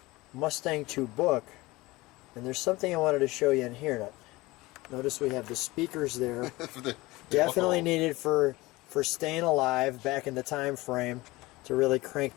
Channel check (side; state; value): right; quieter; 20.8 dB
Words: Mustang II book, and there's something I wanted to show you in here. Now, notice we have the speakers there. Definitely needed for staying alive back in the time frame to really crank